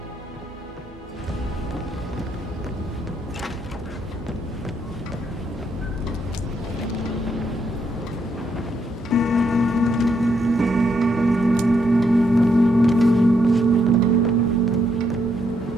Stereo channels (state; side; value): normal; both; correlation 0.76